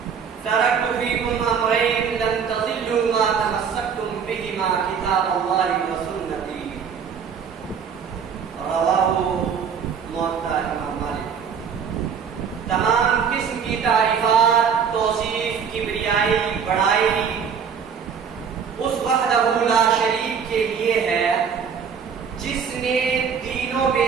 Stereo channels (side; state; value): left; quieter; 6.9 dB